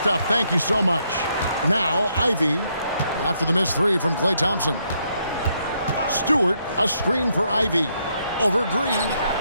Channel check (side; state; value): both; inverted; correlation -0.75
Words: Thank you so much. Now, Ivey, after the missed 3 from Klay Thompson. Stewart, a screen for Ivey. Over Green.